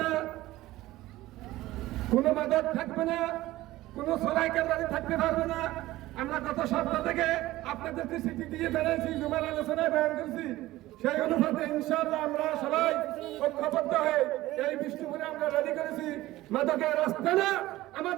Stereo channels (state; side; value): quieter; left; 16.9 dB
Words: না, কোনো মাদক থাকবে না, কোনো সরাই কেন্দ্রানি থাকতে পারবে না। আমরা গত সপ্তাহ থেকে আপনাদেরকে চিঠি দিয়ে জানাইছি, জুমার আলোচনায় বয়ান করছি। সেই অনুপাতে ইনশাআল্লাহ আমরা সবাই ঐক্যবদ্ধ হয়ে এই বিষ্ণুপুরে আমরা রেডি করেছি। মাদকের রাস্তা না,